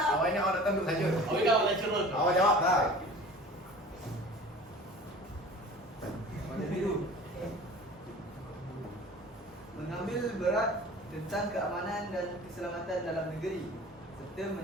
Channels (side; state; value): both; normal; correlation 0.42